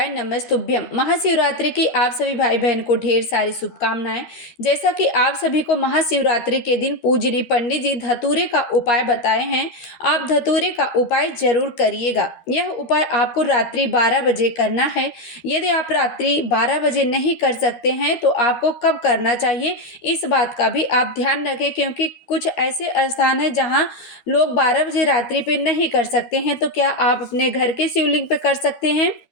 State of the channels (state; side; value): late; right; 12 ms